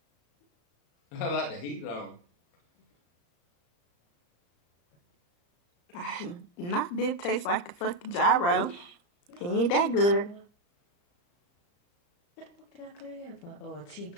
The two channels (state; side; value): late; right; 34 ms